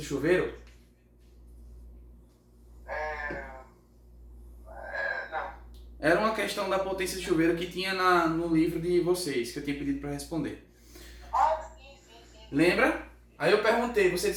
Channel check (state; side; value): identical; both; correlation 1.00